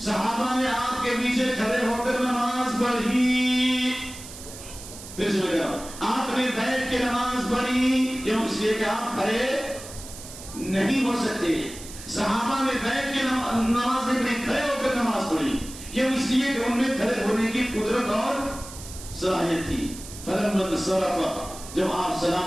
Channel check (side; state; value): right; noise; hiss, 14 dB below the sound